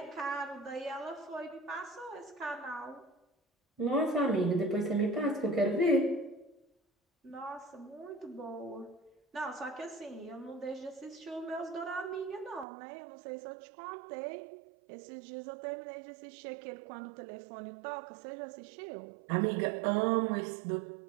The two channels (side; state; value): left; drops out; at 12.7 s